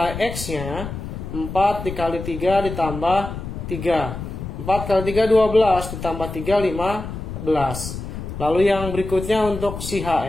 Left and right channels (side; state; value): left; noise; rumble, 8 dB below the sound